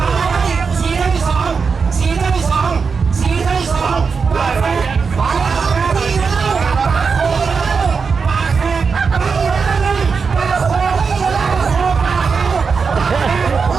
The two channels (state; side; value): quieter; left; 5.3 dB